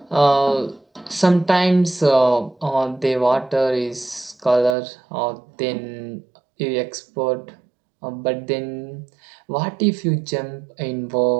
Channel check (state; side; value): drops out; left; at 4.8 s